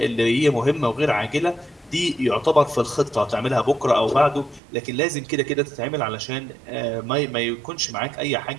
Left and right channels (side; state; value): left; drops out; at 4.6 s